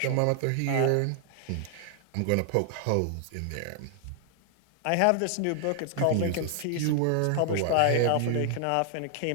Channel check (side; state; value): both; different; correlation 0.00